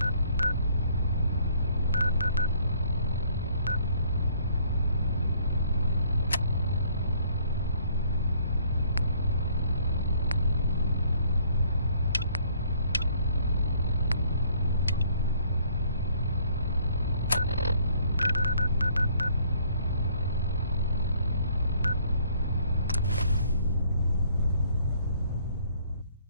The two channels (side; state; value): both; inverted; correlation -0.61